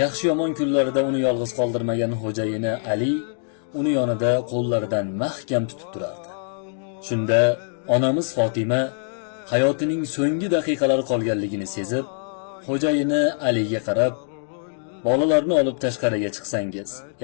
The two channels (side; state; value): right; silent; digital silence